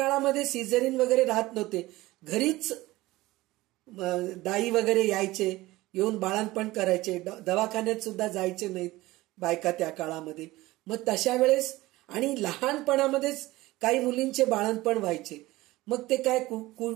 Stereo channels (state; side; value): quieter; left; 18.7 dB